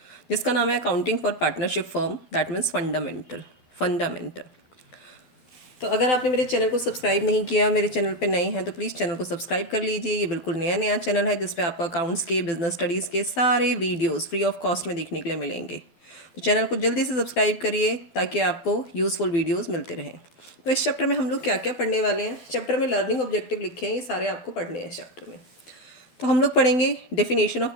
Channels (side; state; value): right; late; 12 ms